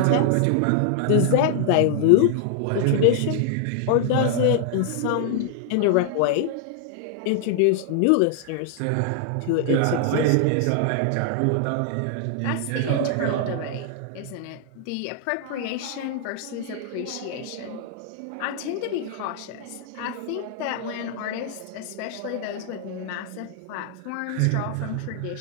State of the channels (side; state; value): both; different; correlation 0.00